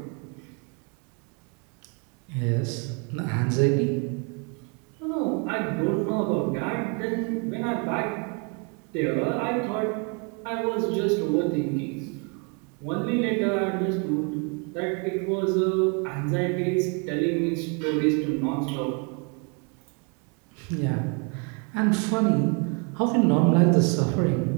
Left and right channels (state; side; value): quieter; left; 35.2 dB